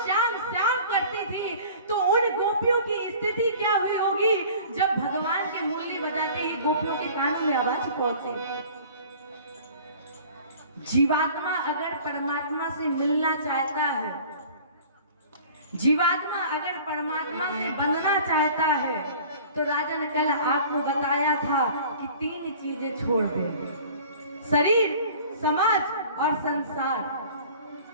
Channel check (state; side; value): inverted; both; correlation -0.46